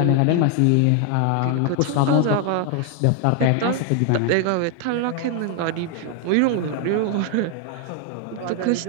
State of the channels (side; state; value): both; different; correlation 0.00